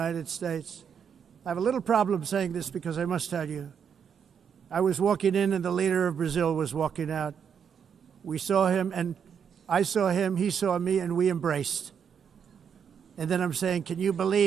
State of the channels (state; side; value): quieter; left; 7.4 dB